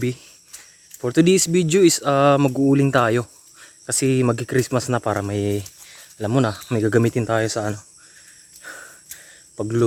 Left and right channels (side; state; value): both; identical; correlation 1.00